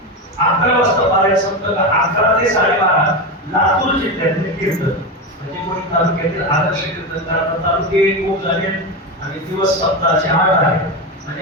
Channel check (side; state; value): both; normal; correlation 0.16